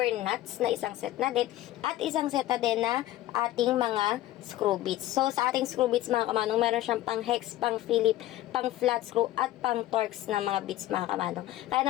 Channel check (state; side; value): quieter; right; 14.9 dB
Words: nuts na isang set na din at isang set na din na ating mga screw bits. So sa ating screw bits mga kamanong, meron siyang pang hex, pang Philip, pang flat screw at pang Torx na mga bits mga kamanong. Kaya